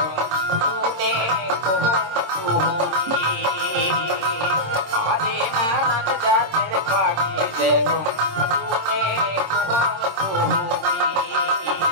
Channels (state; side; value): late; left; 26 ms